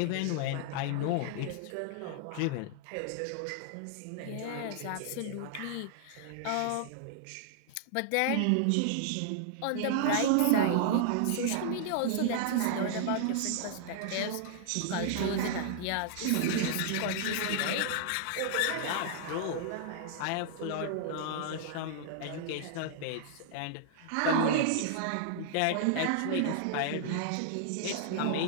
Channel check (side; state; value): both; different; correlation -0.01